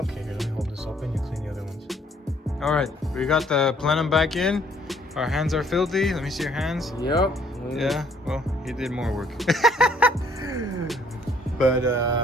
Okay, here, let me hold this open. You clean the other ones. All right, we got the plenum back in. Our hands are filthy. Let me see your hands. Yep. Yeah. Well, he did more work. But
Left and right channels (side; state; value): both; normal; correlation 0.63